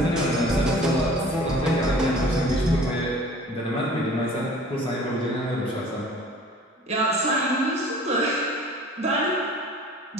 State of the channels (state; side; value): normal; both; correlation 0.48